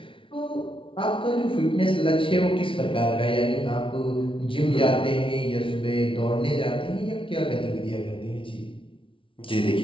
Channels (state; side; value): late; right; 0.25 ms